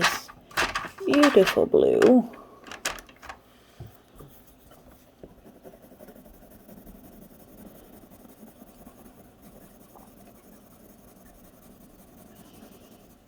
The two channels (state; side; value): identical; both; correlation 1.00